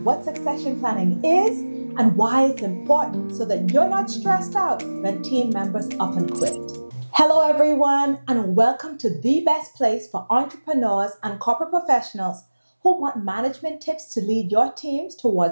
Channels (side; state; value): both; inverted; correlation -1.00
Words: what succession planning is and why it's important so that you're not stressed out when team members up and quit. Hello everyone and welcome to the best place for entrepreneurs and corporate professionals who want management tips to lead your teams